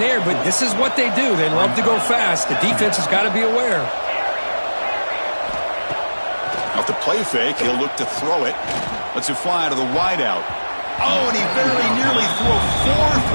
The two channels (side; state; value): both; inverted; correlation -1.00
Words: but this is what they do. They love to go fast. The defense has got to be aware. Off the play fake, he'll look to throw it. Lets it fly to the wideout. Oh, and he very nearly threw a